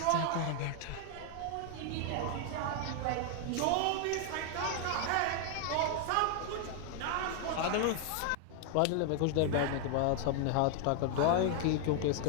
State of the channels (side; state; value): both; different; correlation 0.00